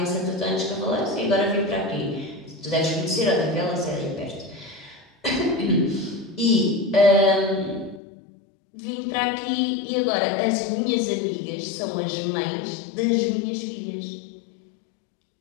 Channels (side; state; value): right; drops out; at 8.0 s